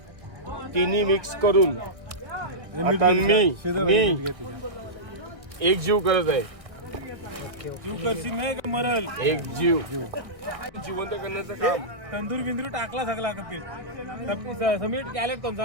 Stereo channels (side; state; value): left; late; 1.6 ms